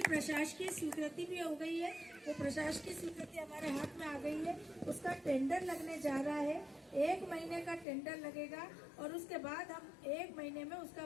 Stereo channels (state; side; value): drops out; right; at 7.9 s